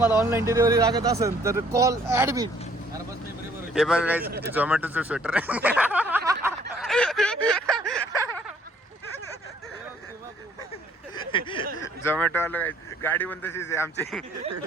ऑनलाईन डिलिव्हरी लागत असेल तर कॉल ऍडमिट. हे बघा गाईज झोमॅटोचं स्वेटर आहे. झोमॅटो वाला गाडी पण तशीच आहे आमची.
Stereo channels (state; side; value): normal; both; correlation 0.61